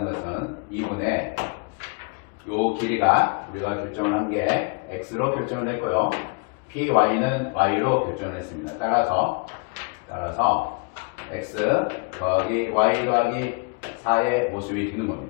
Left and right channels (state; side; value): quieter; right; 33.3 dB